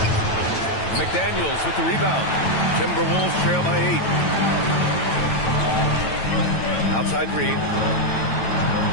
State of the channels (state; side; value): late; right; 9.1 ms